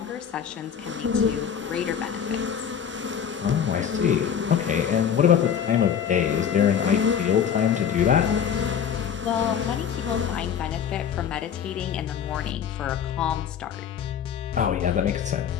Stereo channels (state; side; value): quieter; right; 8.1 dB